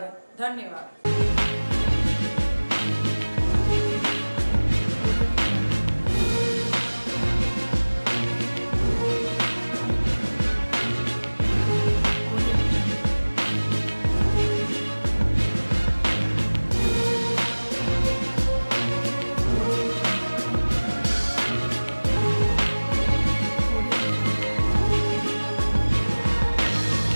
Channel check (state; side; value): inverted; both; correlation -1.00